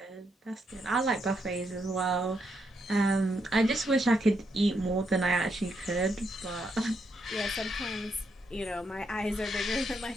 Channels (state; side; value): normal; both; correlation 0.79